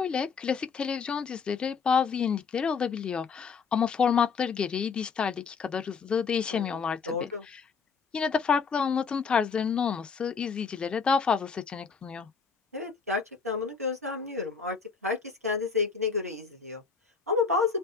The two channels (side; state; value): right; quieter; 5.7 dB